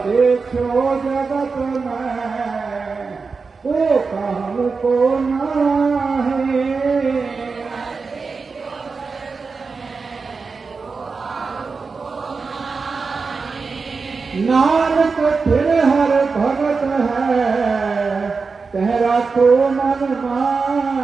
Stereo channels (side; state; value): left; quieter; 4.7 dB